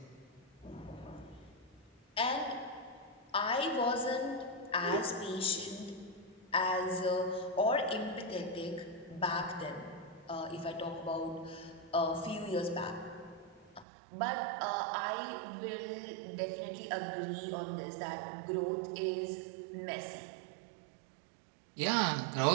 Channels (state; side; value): drops out; left; at 13.9 s